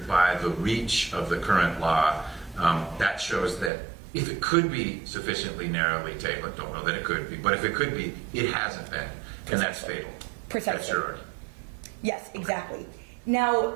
by the reach of the current law, that shows that if it could be sufficiently narrowly tailored, don't know that it could be, but if it could be, it hasn't been, and that's fatal. Precisely. That's your argument. Yes, exactly.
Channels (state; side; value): drops out; left; at 3.7 s